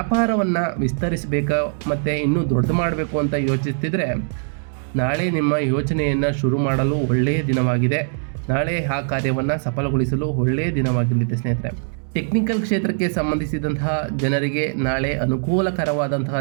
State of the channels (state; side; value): silent; left; digital silence